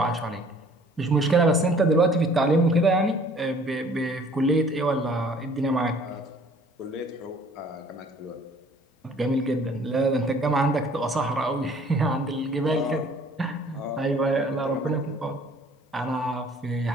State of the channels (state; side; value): normal; both; correlation 0.54